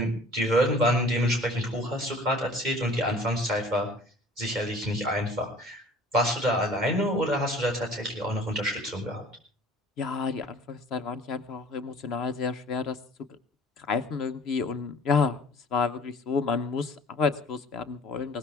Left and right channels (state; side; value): normal; both; correlation 0.49